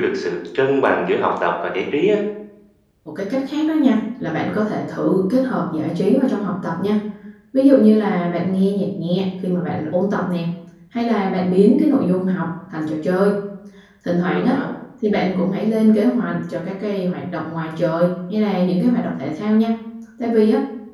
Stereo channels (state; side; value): identical; both; correlation 1.00